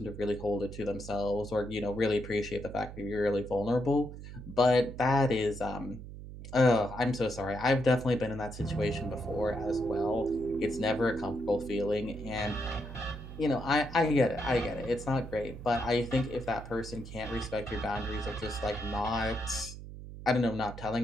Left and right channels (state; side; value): noise; right; hum, 12 dB below the sound